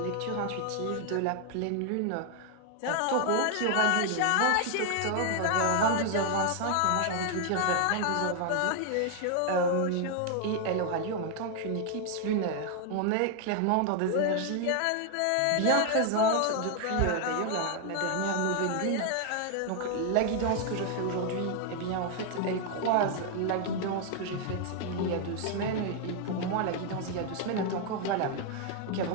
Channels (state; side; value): different; both; correlation 0.00